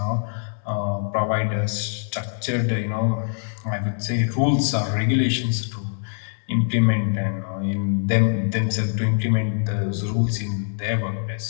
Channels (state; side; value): silent; right; digital silence